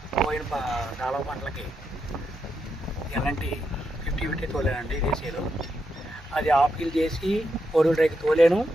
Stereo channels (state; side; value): normal; both; correlation 0.83